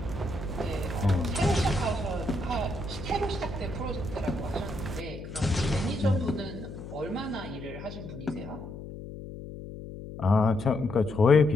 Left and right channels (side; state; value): left; noise; hum, 11 dB below the sound